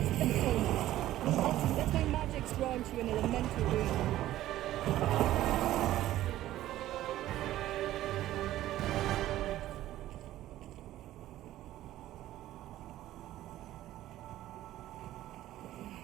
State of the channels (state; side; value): quieter; left; 14.2 dB